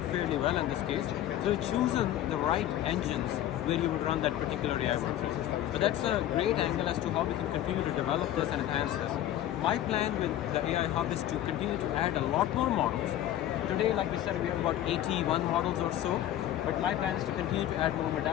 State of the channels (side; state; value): right; quieter; 12.5 dB